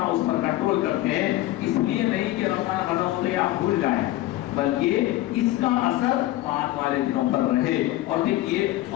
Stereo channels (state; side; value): quieter; right; 16.2 dB